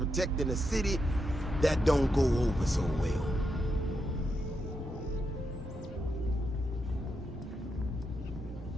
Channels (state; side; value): normal; both; correlation 0.83